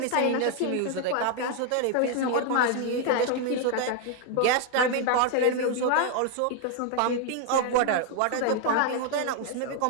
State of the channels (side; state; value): both; different; correlation 0.00